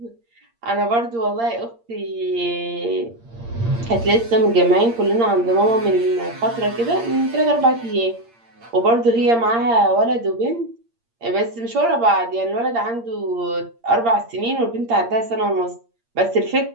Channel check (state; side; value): late; left; 8.7 ms